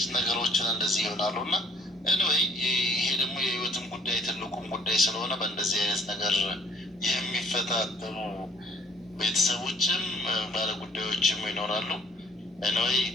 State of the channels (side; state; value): both; normal; correlation 0.59